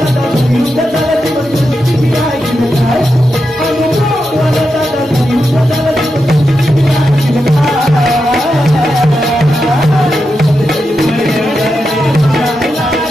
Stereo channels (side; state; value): both; normal; correlation 0.87